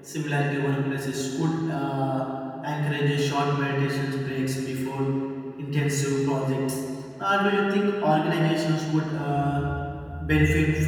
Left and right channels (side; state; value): both; identical; correlation 1.00